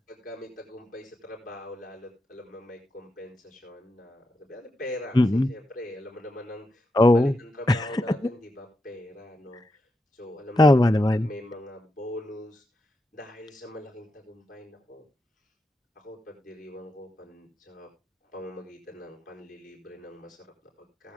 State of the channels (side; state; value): both; normal; correlation 0.85